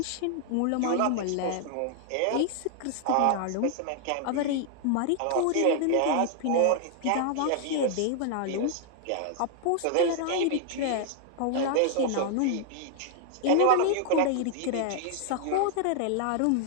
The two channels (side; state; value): both; different; correlation 0.00